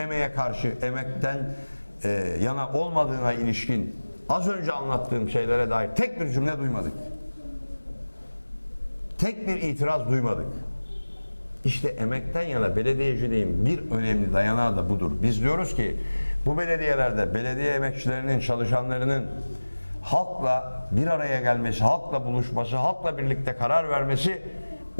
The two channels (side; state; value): both; inverted; correlation -1.00